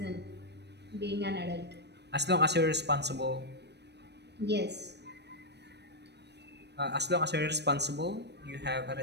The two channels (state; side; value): late; left; 0.49 ms